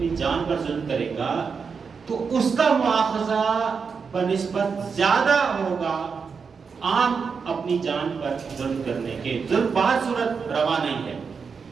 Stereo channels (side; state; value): left; quieter; 5.6 dB